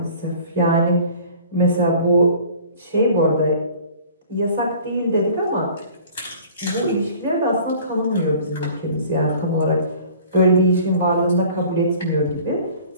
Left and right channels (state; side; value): inverted; both; correlation -0.48